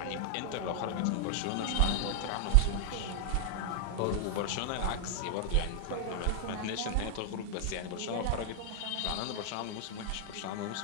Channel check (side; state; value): both; different; correlation 0.00